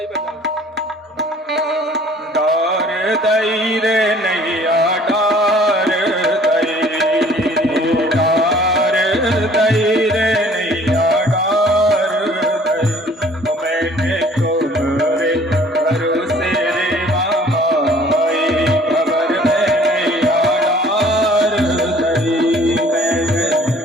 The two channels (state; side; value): normal; both; correlation 0.54